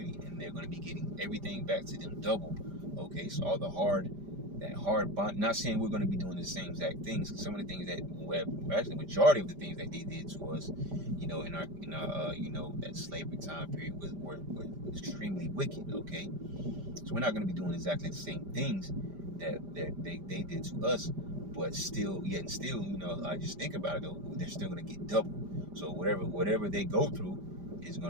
and they're going to be getting everything back to them double. Okay, so all that hard bond. Not saying we're going to be doing the same exact things. Some of the things that, actually, majority of the things that they did to us, in our that slavery time period were extremely wicked. Okay, so we're not going to be doing exactly the same things that they did to us. But still, I just think about it, though, they're still going to get double. So whatever they go through is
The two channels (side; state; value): left; late; 5.1 ms